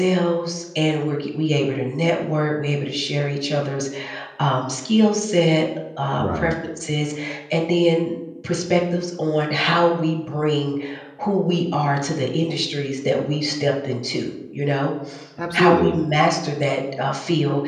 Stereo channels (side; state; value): both; identical; correlation 1.00